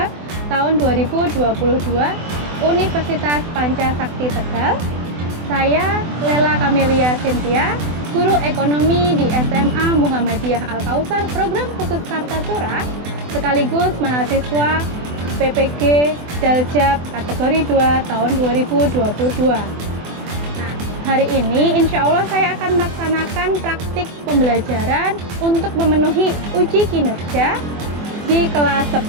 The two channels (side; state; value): left; late; 24 ms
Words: tahun 2022 Universitas Pancasakti Tegal. Saya Lela Kamelia Cynthia, guru ekonomi di SMA Muhammadiyah Al-Kautsar Program Khusus Kartasura, sekaligus mahasiswa PPG Daljab kategori 2 tahun 2022. Hari ini insya Allah saya akan melaksanakan praktik pembelajaran untuk memenuhi uji kinerja di kelas